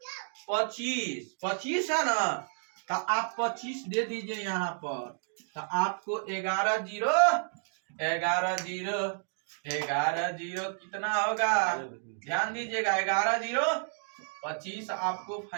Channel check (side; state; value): left; silent; digital silence